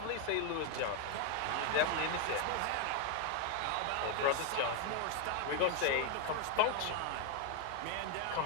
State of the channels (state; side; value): different; both; correlation 0.00